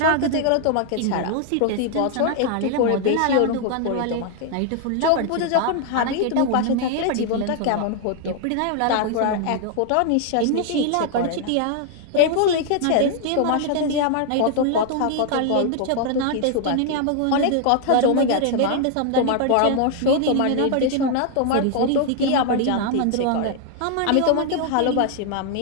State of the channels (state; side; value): different; both; correlation 0.00